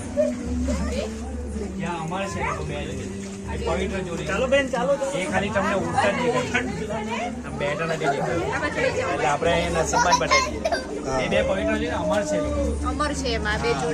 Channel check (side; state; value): both; identical; correlation 1.00